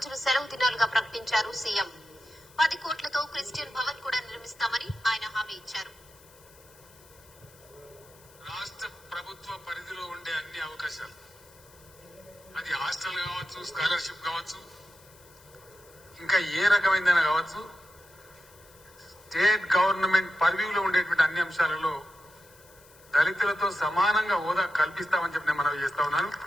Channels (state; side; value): noise; left; hiss, 25 dB below the sound